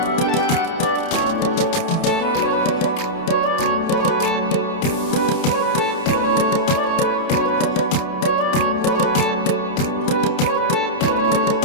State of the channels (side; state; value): right; late; 30 ms